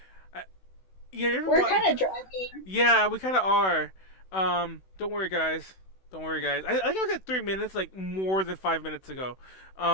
We're kind of driving. Yeah, we kind of are. Don't worry, guys. Don't worry, guys. I think I was at 3 minutes, like more than 5 minutes ago.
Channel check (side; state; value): right; late; 16 ms